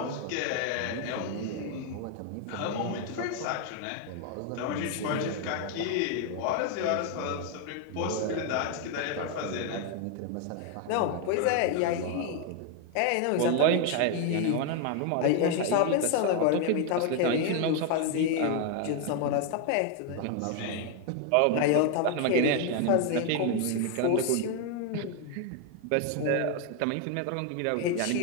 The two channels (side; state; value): both; different; correlation 0.01